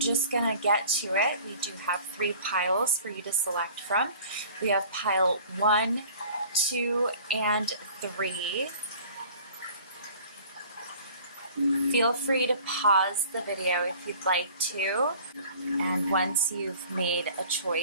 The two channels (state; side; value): inverted; both; correlation -0.47